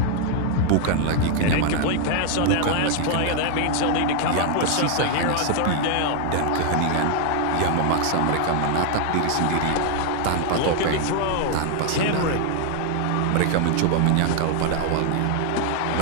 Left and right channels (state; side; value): different; both; correlation 0.00